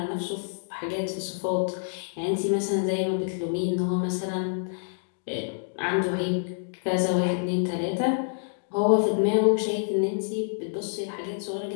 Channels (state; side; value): silent; right; digital silence